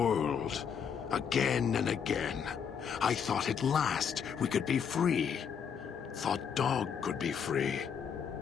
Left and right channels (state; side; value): quieter; right; 7.2 dB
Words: again and again, I thought at last we could be free. Thought Dog could be free.